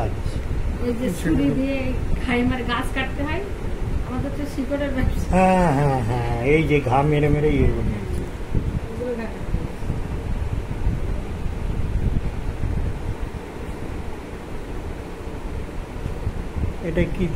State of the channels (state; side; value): identical; both; correlation 1.00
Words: এই যে ছুরি দিয়ে খাইমার গাছ কাটতে হয়, আমাদের তো শিকড়ের ব্যবসা। হ্যাঁ হ্যাঁ হ্যাঁ, এই যে ঘা মেরে মেরে ইয়ে বানিয়েছে। ওগুলো কাটতে হয়। এটা কি